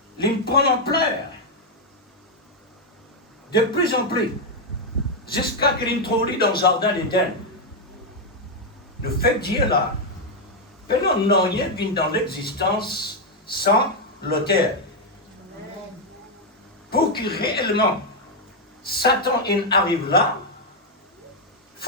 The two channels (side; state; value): both; normal; correlation 0.01